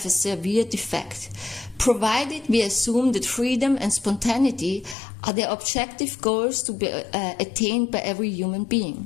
a severe defect, provided we assume that freedom and spontaneity are the objective goals to be attained by every human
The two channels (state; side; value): drops out; right; at 5.0 s